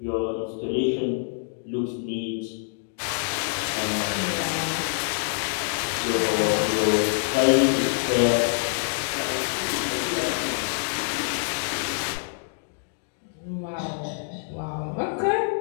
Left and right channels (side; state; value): right; silent; digital silence